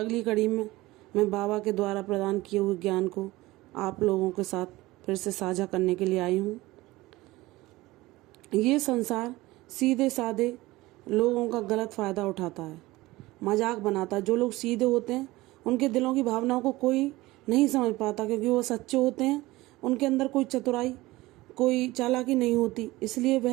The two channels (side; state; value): left; quieter; 19.3 dB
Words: कड़ी में मैं बाबा के द्वारा प्रदान किए हुए ज्ञान को आप लोगों के साथ फिर से साझा करने के लिए आई हूँ। ये संसार सीधे साधे लोगों का गलत फ़ायदा उठाता है, मजाक बनाता है। जो लोग सीधे होते हैं उनके दिलों की भावनाओं को कोई नहीं समझ पाता, क्योंकि वो सच्चे होते हैं। उनके अंदर कोई चतुराई, कोई चालाकी नहीं होती, इसलिए